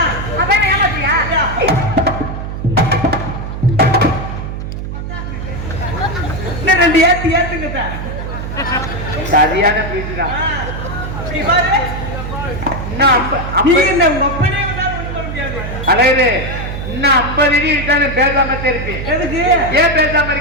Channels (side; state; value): right; noise; hum, 6 dB below the sound